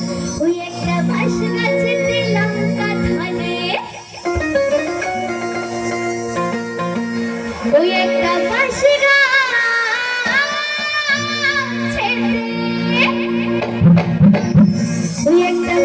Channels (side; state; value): both; identical; correlation 1.00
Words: ওই একটা বাঁশ গাছেতে লঙ্কা ধরে, ওই একটা বাঁশ ওই একটা